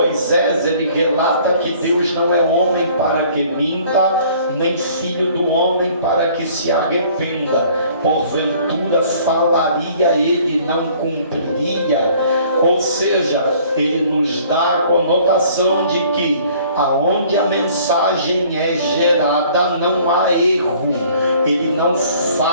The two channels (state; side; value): inverted; both; correlation -0.55